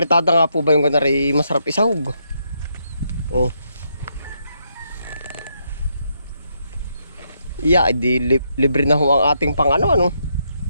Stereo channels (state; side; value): inverted; both; correlation -0.78